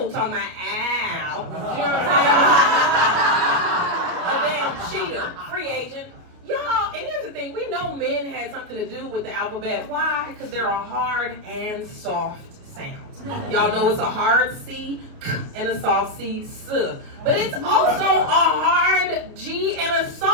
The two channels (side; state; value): left; late; 29 ms